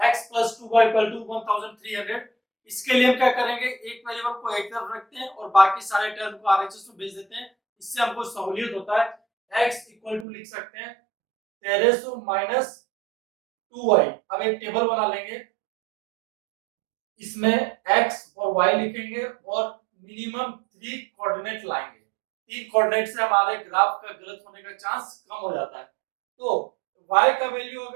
+ 2y = 1300। इसके लिए हम क्या करेंगे? एक वेरिएबल को एक तरफ रखते हैं और बाकी सारे टर्म को आरएचएस में भेज देते हैं। इससे हमको सहूलियत होता है। x = लिख सकते हैं 1300 - 2y। अब एक टेबल बना लेंगे, इसमें x और y लिखेंगे और मिनिमम 3 कोऑर्डिनेट लाएंगे। 3 कोऑर्डिनेट से हमारे ग्राफ का गलत होने का चांस कम हो जाता है। तो y का वैल्यू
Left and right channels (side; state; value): left; drops out; at 10.2 s